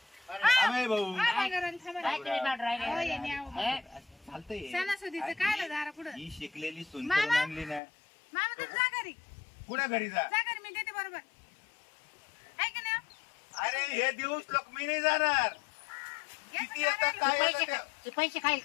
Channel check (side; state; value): right; drops out; at 7.8 s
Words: अमेय भाऊ बंगारवाली थांबा काय तुम्ही बाट राहिले? हो, ये न्याव. हे? चालतंय सणासुदीचं काय आलं दारा पुढं ही शिकलेली सून मामा? करून आणली ना मामा तर जा घरी कुठे घरी जा जा घरी मी देते बरोबर आहे का नाही अरे हे दिवस लोक मी नाही जाणार किती येतात याचं काय पैसे येतं ते? ते पैसे खाईल